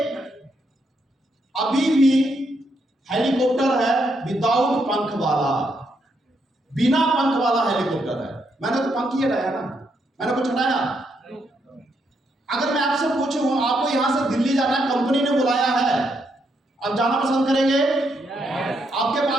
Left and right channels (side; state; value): both; normal; correlation 0.78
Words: अभी भी हेलीकॉप्टर है विदाउट पंख वाला, बिना पंख वाला हेलीकॉप्टर है। मैंने तो पंख ही हटाया ना, मैंने कुछ हटाया? अगर मैं आपसे पूछूं आपको यहां से दिल्ली जाना है, कंपनी ने बुलाया है, आप जाना पसंद करेंगे? आपके